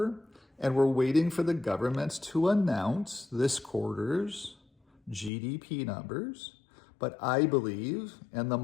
and we're waiting for the government to announce this quarter's GDP numbers. But I believe, and the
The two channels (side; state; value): right; drops out; at 5.3 s